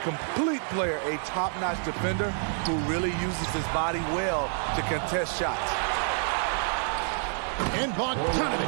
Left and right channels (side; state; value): left; silent; 59 dB below the other